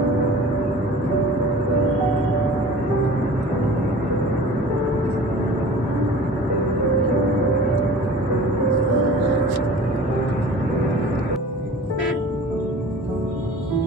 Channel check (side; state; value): both; normal; correlation 0.42